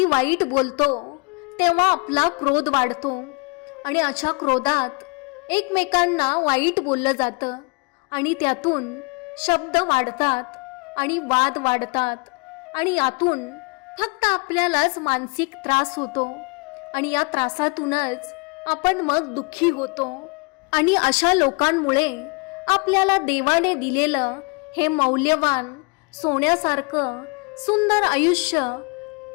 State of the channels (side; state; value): right; quieter; 31.6 dB